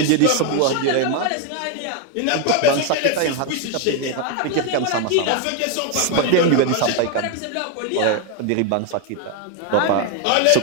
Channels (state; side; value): different; both; correlation 0.01